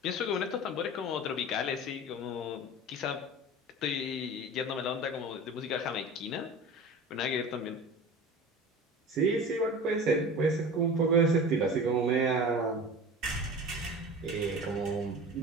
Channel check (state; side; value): normal; both; correlation 0.35